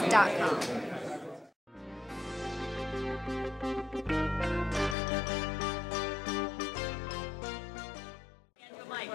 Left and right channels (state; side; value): drops out; right; at 5.0 s